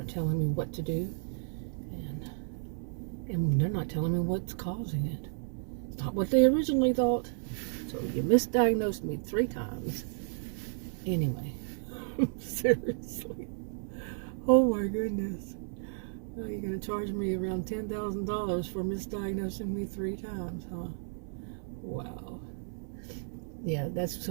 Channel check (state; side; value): silent; left; 56 dB below the other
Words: telling me what to do. And they're not telling me what's causing it. It's not what they originally thought. So you misdiagnosed me 3 times. Anyway, seriously. Oh my goodness. Now you're going to charge me around $10,000 for misdiagnosing me 3 times, huh? Wow. Yeah, that's